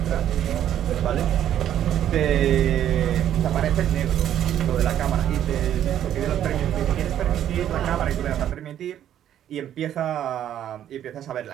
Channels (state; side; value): quieter; left; 10.8 dB